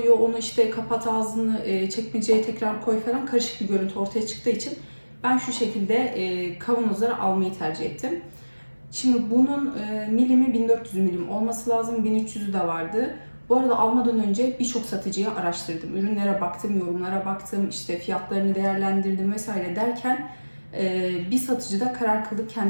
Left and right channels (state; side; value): inverted; both; correlation -1.00